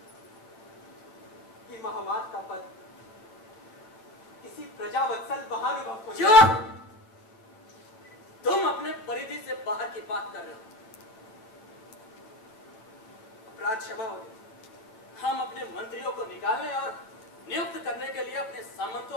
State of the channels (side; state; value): right; late; 9.2 ms